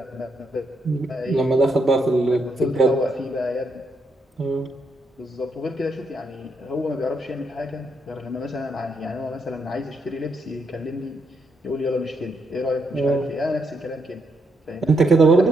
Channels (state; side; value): normal; both; correlation 0.79